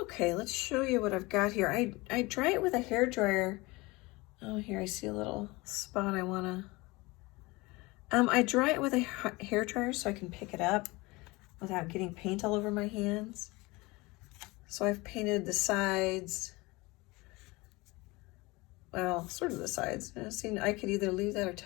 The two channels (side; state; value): right; quieter; 23.3 dB